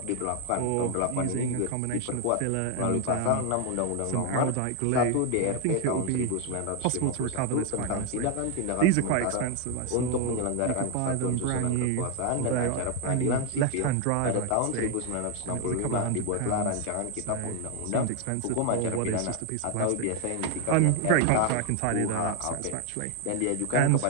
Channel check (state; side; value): different; both; correlation 0.01